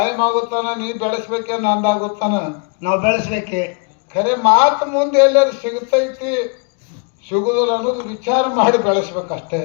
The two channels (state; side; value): quieter; right; 38.2 dB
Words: ಆಗುತ್ತಾನ, ನೀ ಬೆಳೆಸ್ಬೇಕೆ ನಂದಾಗುತ್ತಾನ, ನಾವು ಬೆಳೆಸ್ಬೇಕೆ. ಖರೆ ಮಾತು ಮುಂದೆ ಎಲ್ಲರೂ ಸಿಗುತ್ತೈತಿ ಸಿಗುದಿಲ್ಲ ಅನ್ನೋದು ವಿಚಾರ ಮಾಡಿ ಬೆಳೆಸ್ಬೇಕಷ್ಟೇ.